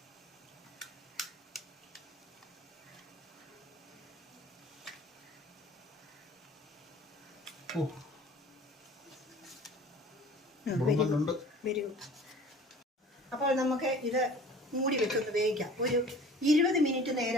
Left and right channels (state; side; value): normal; both; correlation 0.45